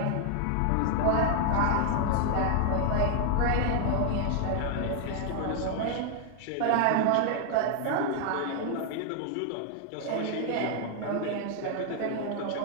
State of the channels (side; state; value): both; different; correlation 0.00